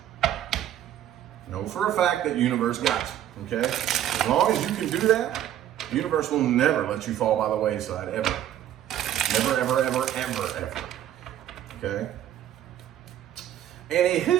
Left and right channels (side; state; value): left; quieter; 11.5 dB